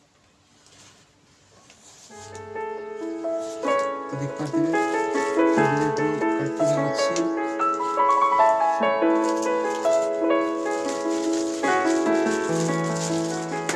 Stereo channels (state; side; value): identical; both; correlation 1.00